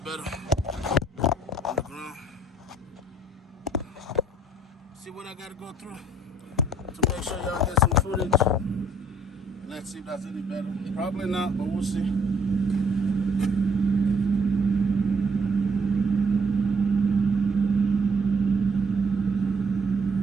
on the ground. See what I gotta go through to make sure y'all get some footage. Let's see if that's any better. Probably not, but we'll see.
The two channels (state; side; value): normal; both; correlation 0.62